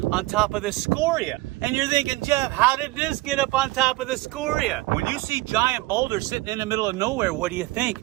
on top of the scoria. And you're thinking, Jeff, how did this get up on top of the scoria? When you see giant boulders sitting in the middle of nowhere, what do you think?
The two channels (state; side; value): quieter; left; 20.4 dB